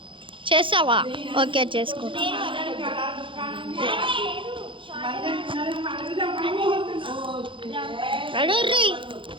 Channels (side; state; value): left; late; 0.25 ms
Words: చేస్తావా? ఓకే, చేసుకో.